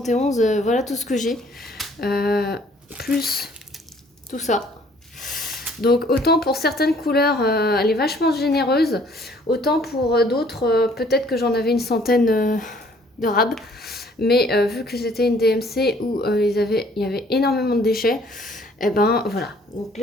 voilà tout ce que j'ai. Plus tout ça. Donc, autant pour certaines couleurs, elle est vachement généreuse, autant pour d'autres, peut-être que j'en avais une centaine de rabs. Mais vu que c'était une DMC où il y avait énormément de déchets, et ben voilà. Donc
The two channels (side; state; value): both; normal; correlation 0.59